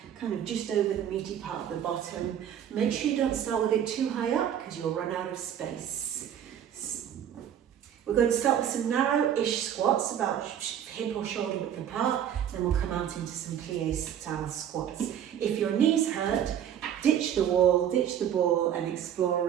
kind of just over the meaty part of the bottom. Make sure you don't start with it too high up because you'll run out of space. We're going to start with some narrow-ish squats, about hip or shoulder width apart. Then we'll come out into some plie style squats. If your knees hurt, ditch the wall, ditch the ball, and explore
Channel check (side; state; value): left; quieter; 9.7 dB